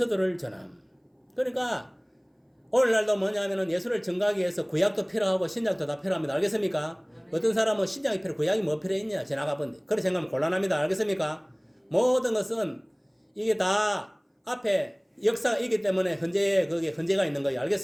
전함. 그러니까 오늘날도 뭐냐면은 예수를 증거하기 위해서 구약도 필요하고 신약도 다 필요합니다. 알겠습니까? 어떤 사람은 신약이 필요, 구약이 뭐 필요했냐 지나가 본데 그렇게 생각하면 곤란합니다. 알겠습니까? 모든 것은 이게 다 앞에 역사가 있기 때문에 거기에 현재가 있는 거예요.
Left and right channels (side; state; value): both; identical; correlation 1.00